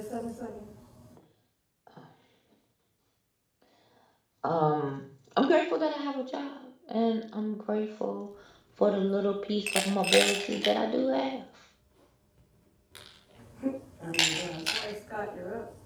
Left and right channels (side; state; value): both; identical; correlation 1.00